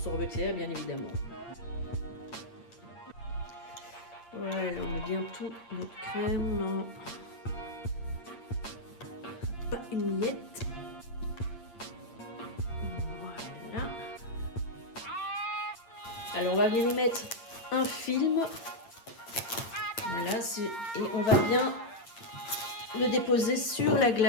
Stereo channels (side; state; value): right; late; 8.7 ms